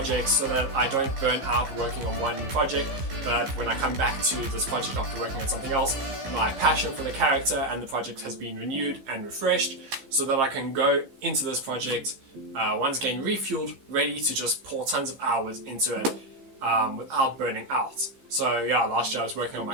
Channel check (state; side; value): late; left; 15 ms